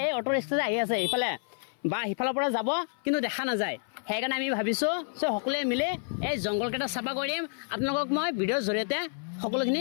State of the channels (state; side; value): silent; right; 55 dB below the other